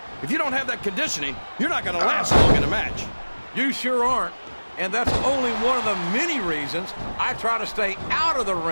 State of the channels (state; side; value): inverted; both; correlation -1.00